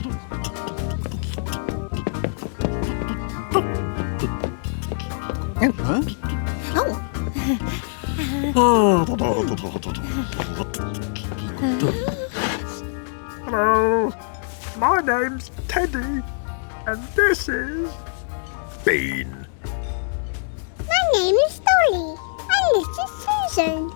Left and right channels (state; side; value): silent; right; 63 dB below the other